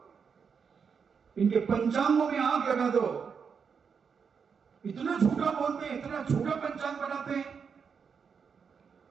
इनके पंचांगों में आग लगा दो। इतना झूठा बोलते हैं, इतना झूठा पंचांग बनाते हैं।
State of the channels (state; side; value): quieter; left; 6.3 dB